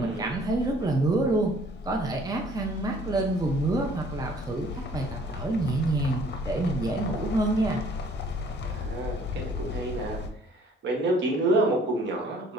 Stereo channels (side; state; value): both; normal; correlation 0.56